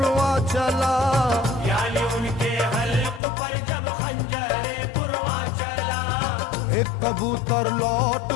चला, यानी उनके हल्क पर जब खंजरे पुरवा चला, एक कबूतर लौट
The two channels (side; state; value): right; drops out; at 3.2 s